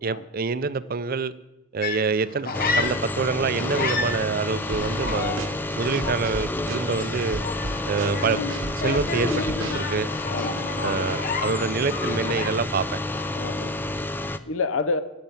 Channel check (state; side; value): normal; both; correlation 0.21